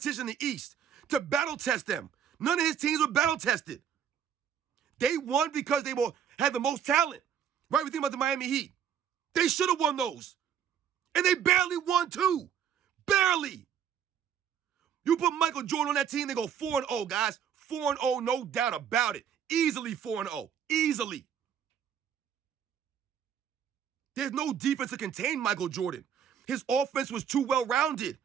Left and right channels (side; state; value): left; quieter; 8.6 dB